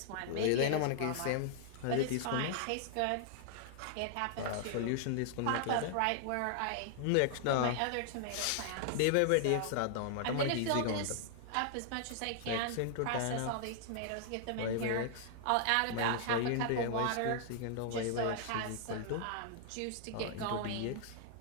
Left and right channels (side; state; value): both; different; correlation -0.01